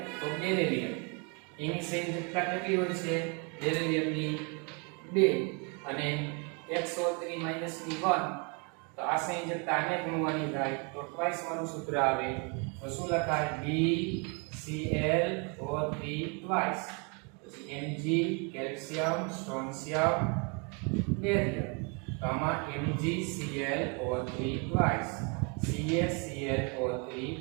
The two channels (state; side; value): quieter; left; 34.6 dB